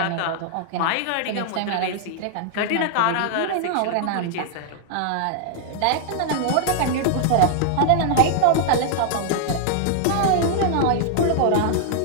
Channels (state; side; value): different; both; correlation -0.01